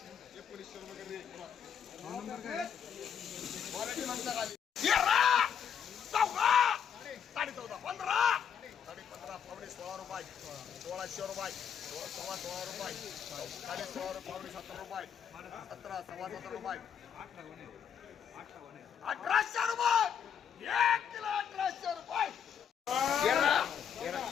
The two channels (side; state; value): right; quieter; 8.0 dB